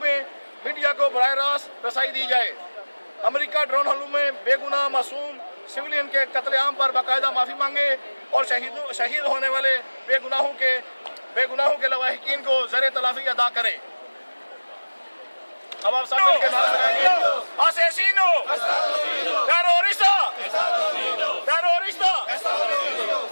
मीडिया को बराह रास्त रसाई दी जाए। अमेरिका ड्रोन हमलों में बेगुनाह मासूम सिविलियन के कत्लेआम पर बाकायदा माफ़ी मांगे और शहीद होने वाले बेगुनाहों के लवाहिकीन को ज़र तलाफ़ी अदा करें। अब आप सब मिलकर नारा लगाएंगे, asesino, terrorista, terrorista,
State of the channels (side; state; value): both; inverted; correlation -1.00